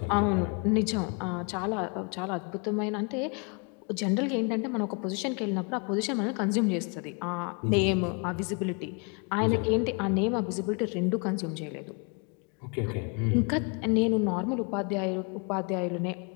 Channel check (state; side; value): quieter; right; 34.8 dB